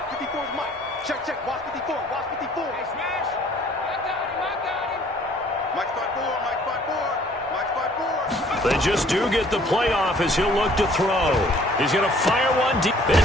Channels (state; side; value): normal; both; correlation 0.57